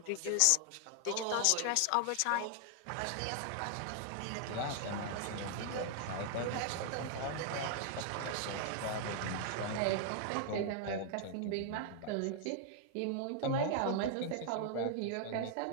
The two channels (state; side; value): different; both; correlation 0.00